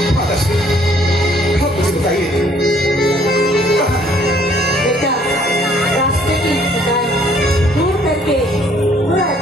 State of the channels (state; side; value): normal; both; correlation 0.62